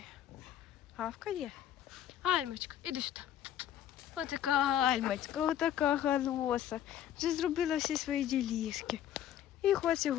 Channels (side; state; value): right; quieter; 10.8 dB